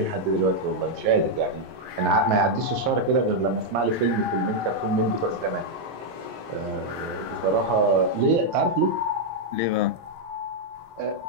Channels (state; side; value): late; left; 17 ms